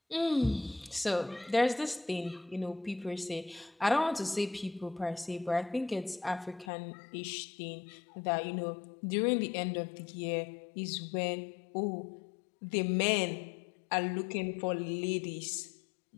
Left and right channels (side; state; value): right; drops out; at 6.7 s